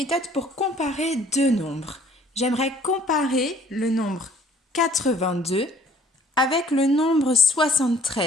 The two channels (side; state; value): both; normal; correlation 0.57